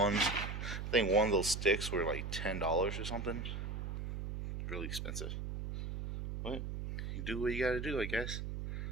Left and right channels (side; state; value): right; noise; hum, 5 dB below the sound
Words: I think one of those sticks were like $10 or something. Really expensive. But you do what you gotta do, I guess.